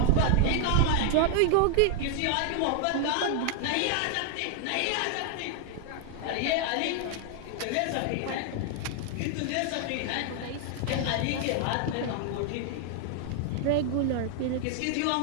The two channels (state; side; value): different; both; correlation 0.00